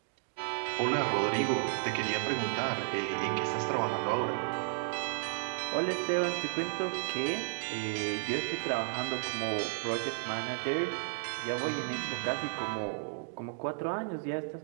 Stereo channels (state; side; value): silent; left; digital silence